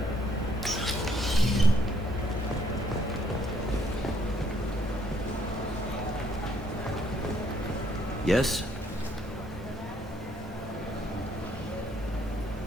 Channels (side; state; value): both; normal; correlation 0.68